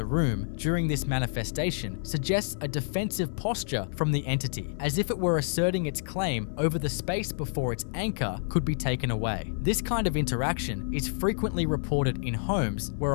room during this manifestation suggests a defensive posture from the entity, as if it were asserting its claim over the space before its anchor could be taken away. This kind of interaction is frequently reported in homes where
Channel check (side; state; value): right; silent; 59 dB below the other